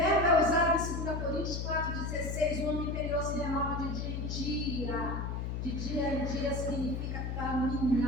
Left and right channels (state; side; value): noise; left; hum, 3 dB below the sound